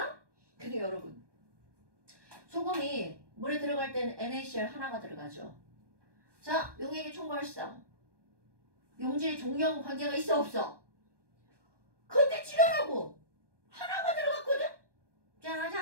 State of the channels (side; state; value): left; late; 1.2 ms